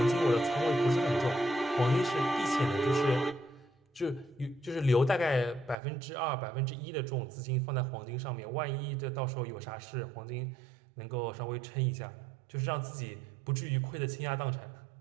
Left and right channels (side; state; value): left; drops out; at 5.8 s